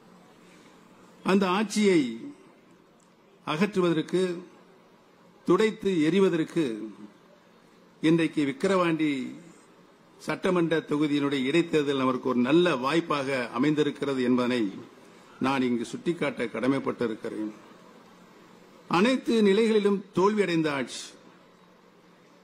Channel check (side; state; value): both; identical; correlation 1.00